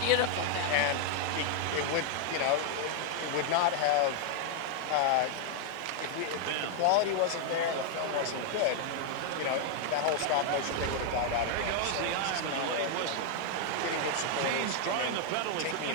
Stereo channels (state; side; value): different; both; correlation 0.00